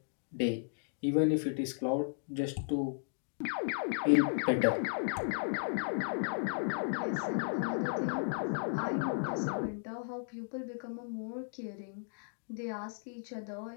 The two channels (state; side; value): silent; right; digital silence